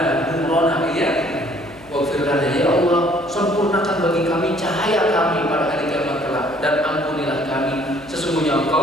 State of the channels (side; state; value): left; noise; hum, 24 dB below the sound